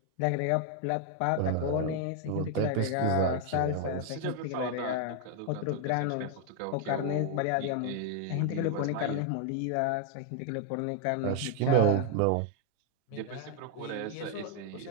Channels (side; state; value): both; different; correlation 0.00